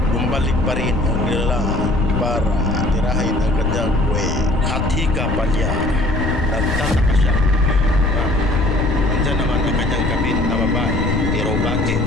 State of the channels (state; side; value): noise; left; rumble, 2 dB below the sound